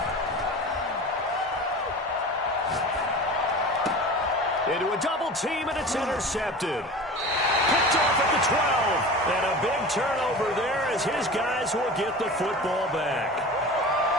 Into a double team, and it's intercepted. Picked off at the 12. And a big turnover there as his guys will get the football back.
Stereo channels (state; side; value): normal; both; correlation 0.35